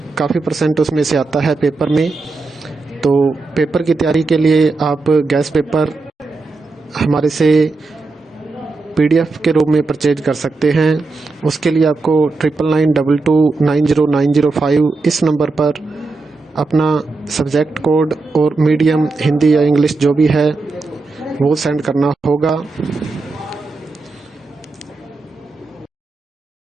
काफ़ी परसेंट उसमें से आता है पेपर में। तो पेपर की तैयारी के लिए आप गैस पेपर हमारे से PDF के रूप में परचेज कर सकते हैं। उसके लिए आपको 9992290905 इस नंबर पर अपना सब्जेक्ट कोड और मीडियम हिंदी या इंग्लिश जो भी है वो सेंड करना होगा।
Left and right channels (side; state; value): left; quieter; 3.7 dB